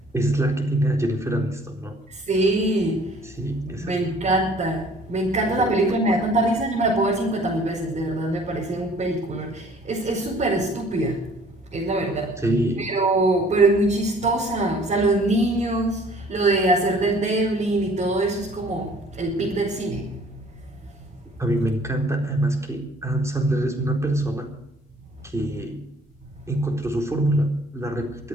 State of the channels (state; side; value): normal; both; correlation 0.55